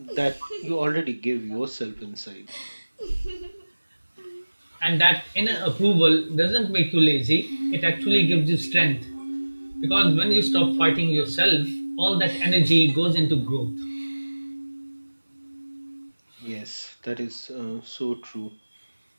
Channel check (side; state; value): both; inverted; correlation -1.00